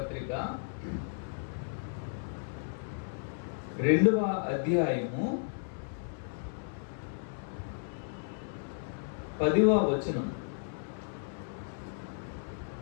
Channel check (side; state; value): right; silent; 55 dB below the other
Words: 2వ అధ్యాయము 10వ వచనం.